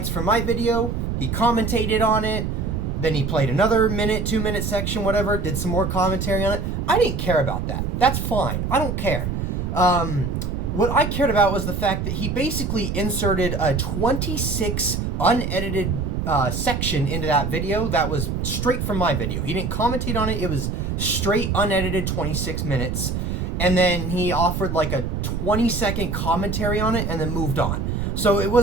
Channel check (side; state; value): right; noise; rumble, 2 dB below the sound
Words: from my video. He commentated on it. Then he played another minute, 2-minute section, whatever, did some more commentary on it. I didn't care about that. That's fine. I don't care. What I cared about was the fact that he basically inserted a 26 unedited section into that video that was straight from my video. He didn't commentate on it. It was straight unedited 26 minutes. And then he offered like a 20-second commentary on it and then moved on. So it